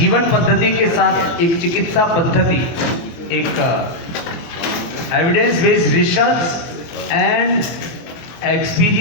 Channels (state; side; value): late; right; 24 ms